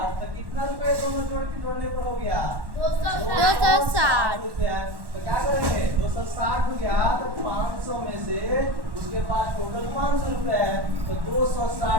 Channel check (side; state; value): left; late; 1.1 ms